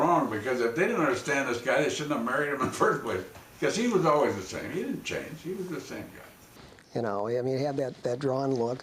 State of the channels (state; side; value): identical; both; correlation 1.00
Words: because if they didn't understand this guy, they shouldn't have married him in the first place. Because he was always the same. He didn't change. He was the same guy. You know, I mean, he had that drawn look,